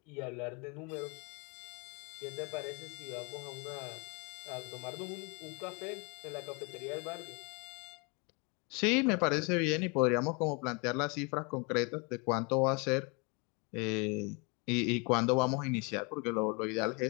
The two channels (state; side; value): quieter; right; 31.4 dB